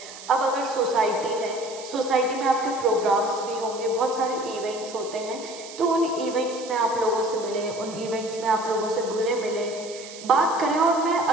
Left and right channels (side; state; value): right; noise; hiss, 15 dB below the sound